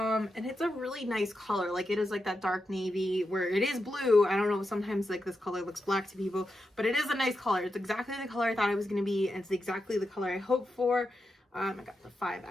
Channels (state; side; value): normal; both; correlation 0.88